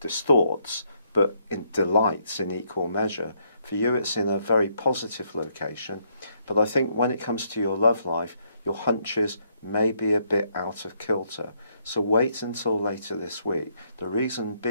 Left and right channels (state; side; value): inverted; both; correlation -0.73